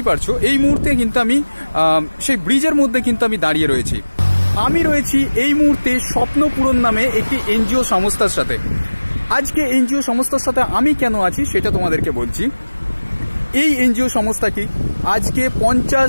পারছো এই মুহূর্তে কিন্তু আমি সেই ব্রিজের মধ্যে কিন্তু আমি দাঁড়িয়ে রয়েছি। আমি রয়েছি এই মুহূর্তে স্বপ্নপূরণ নামে একটি NGO সংস্থার সাথে। আজকে NGO সংস্থার সাথে আমি কেন আছি সেটা তোমাদেরকে বলছি। এই NGO সংস্থাটি আজকে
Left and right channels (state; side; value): inverted; both; correlation -1.00